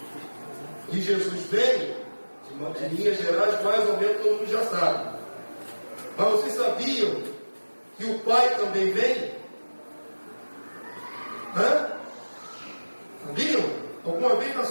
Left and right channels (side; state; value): both; inverted; correlation -1.00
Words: E Jesus veio, de linhas gerais, mais ou menos todo mundo já sabe. Mas vocês sabiam que o Pai também vem? Hã? Sabiam? Alguma vez na